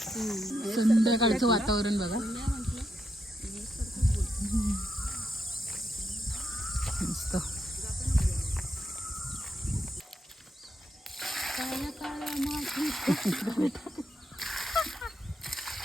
संध्याकाळचं वातावरण बघा. मस्त.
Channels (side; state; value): both; normal; correlation 0.82